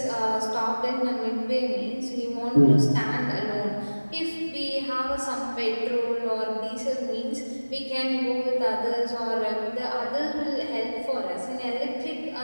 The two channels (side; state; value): both; inverted; correlation -1.00